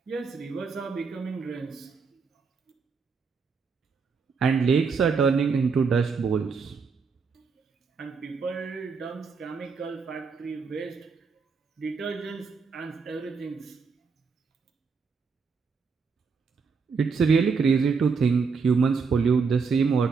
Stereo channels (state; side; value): quieter; left; 5.2 dB